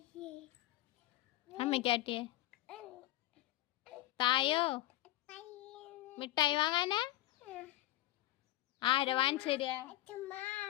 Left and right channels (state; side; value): quieter; right; 15.4 dB